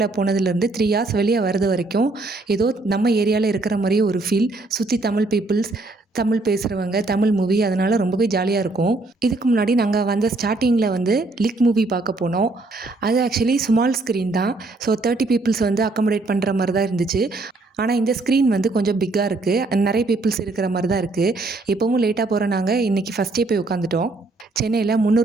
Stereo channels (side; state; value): left; quieter; 3.2 dB